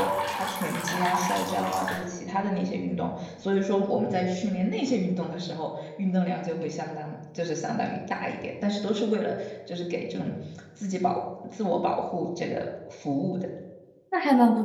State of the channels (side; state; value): both; identical; correlation 1.00